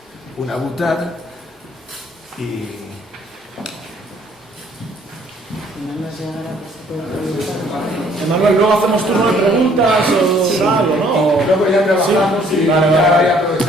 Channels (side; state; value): both; normal; correlation 0.61